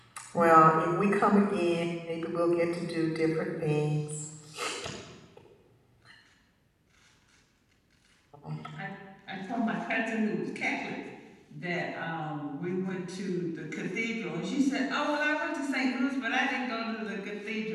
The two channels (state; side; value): identical; both; correlation 1.00